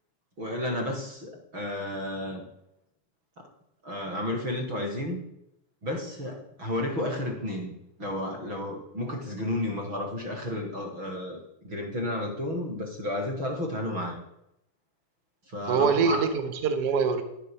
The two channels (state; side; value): late; left; 6.2 ms